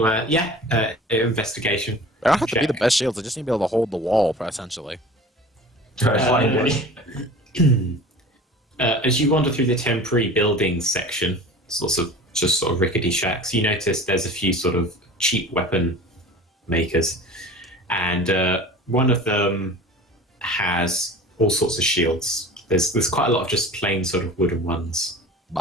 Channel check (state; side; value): normal; both; correlation 0.40